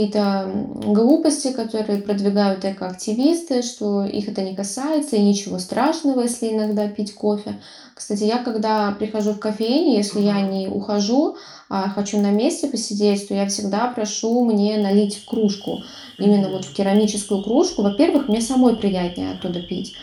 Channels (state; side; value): identical; both; correlation 1.00